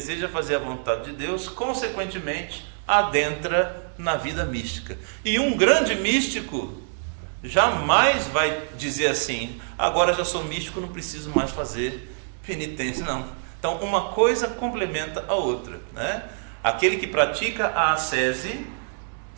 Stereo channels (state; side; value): silent; left; digital silence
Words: fazer a vontade de Deus, consequentemente adentra na vida mística. E um grande místico jamais vai dizer assim: agora já sou místico, não preciso mais fazer penitência. Não. Então uma coisa complementa a outra, Aquele que pratica a ascese